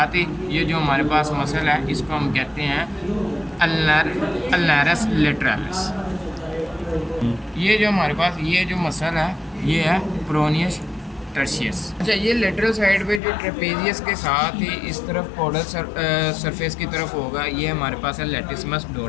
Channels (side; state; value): right; drops out; at 13.2 s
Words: ही ये जो हमारे पास मसल है इसको हम कहते हैं अल्नारस लेटरालिस। ये जो हमारे पास ये जो मसल है ये है प्रोनियस टर्शियस। अच्छा, ये लेटरल साइड पे जो ट्रेपेजियस के साथ ही इस तरफ कोडल सरफेस की तरफ होगा ये हमारे पास है लेटिसमस